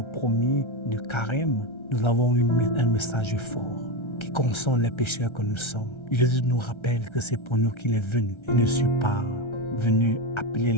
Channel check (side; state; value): right; late; 1.3 ms